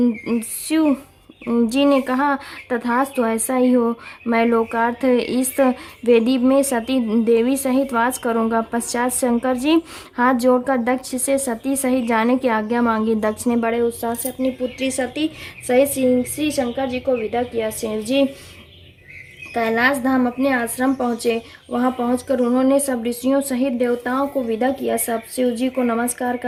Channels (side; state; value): both; identical; correlation 1.00